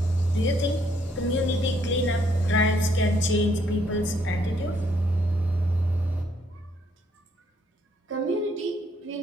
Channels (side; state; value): both; normal; correlation 0.69